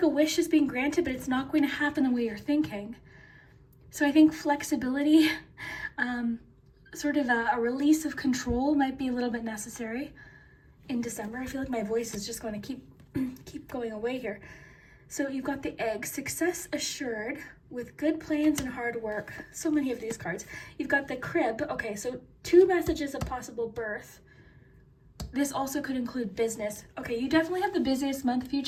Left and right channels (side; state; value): both; identical; correlation 1.00